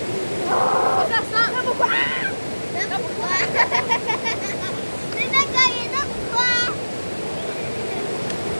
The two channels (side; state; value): both; inverted; correlation -1.00